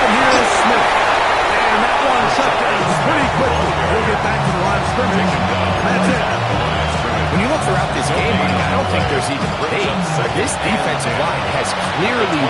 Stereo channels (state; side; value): identical; both; correlation 1.00